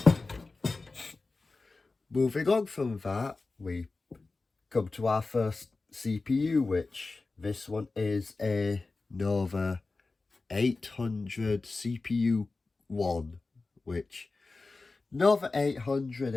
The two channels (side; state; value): right; quieter; 3.7 dB